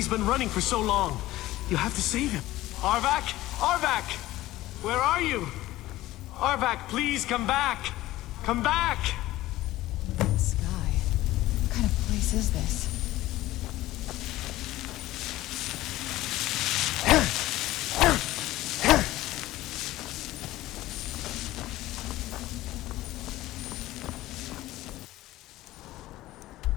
been running for so long. You have to save him. Arvak! Arvak! Where are you? Arvak, please come back! Come back! Sky. What kind of place is this?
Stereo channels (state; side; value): quieter; right; 16.4 dB